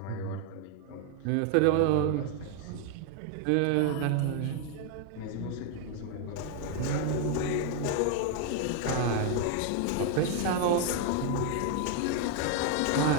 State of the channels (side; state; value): both; different; correlation 0.00